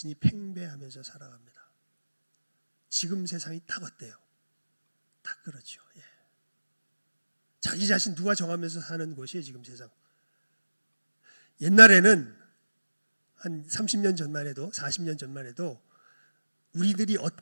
팽배하면서 살아갑니다. 지금 세상이 딱 어때요? 딱 그렇죠. 예. 자기 자신 누가 정하면서 사는 곳이에요, 지금 세상. 옛날에는 한 30년 전만 해도, 40년 전만 해도 우리들이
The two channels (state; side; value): inverted; both; correlation -1.00